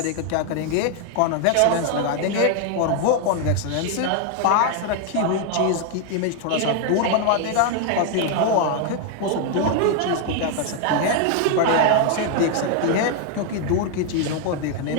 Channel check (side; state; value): both; different; correlation 0.00